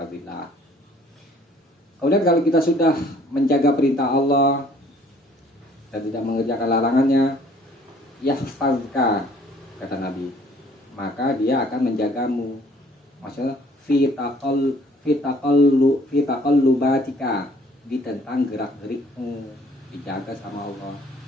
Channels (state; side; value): normal; both; correlation 0.58